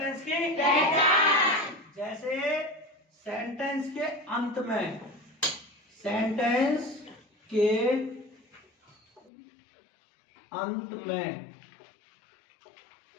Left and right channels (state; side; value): drops out; right; at 9.3 s